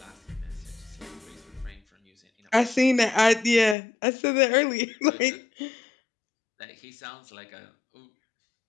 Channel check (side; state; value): right; drops out; at 3.8 s